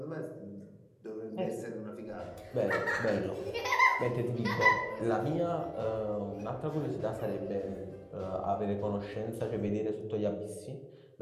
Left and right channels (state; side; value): identical; both; correlation 1.00